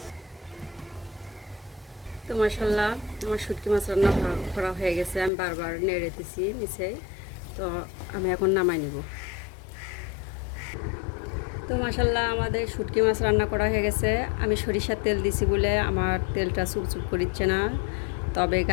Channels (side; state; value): right; drops out; at 5.3 s